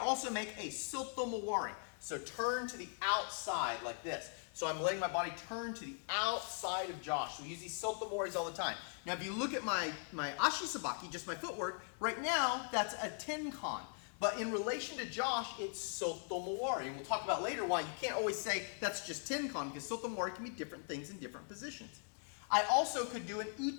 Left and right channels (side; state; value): right; silent; 51 dB below the other